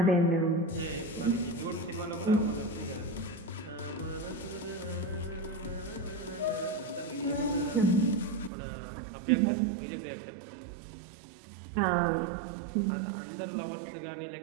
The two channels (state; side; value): drops out; left; at 8.5 s